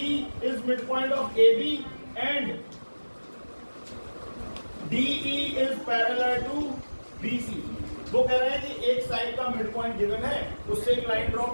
is midpoint of AB and DE is parallel to BC। वो कह रहे हैं कि एक साइड का मिड पॉइंट गिवन है, उससे एक लाइन ड्रॉ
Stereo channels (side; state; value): both; inverted; correlation -1.00